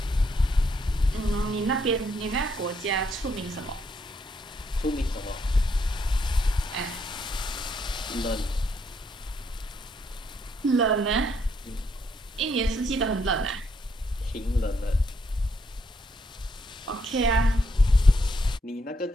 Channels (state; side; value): normal; both; correlation 0.74